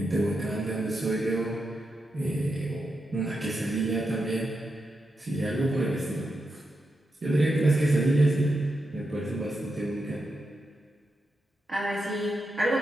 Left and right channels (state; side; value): normal; both; correlation 0.86